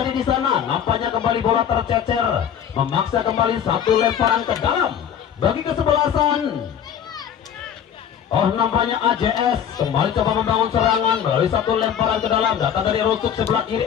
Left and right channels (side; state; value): right; quieter; 8.8 dB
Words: di sana. Nampaknya kembali bola tercecer, memaksa kembali satu lemparan ke dalam bagi kesebelasan. Oh, nampaknya AJS kembali coba membangun serangan melalui satu lemparan ke dalam. Datang dari rusuk sebelah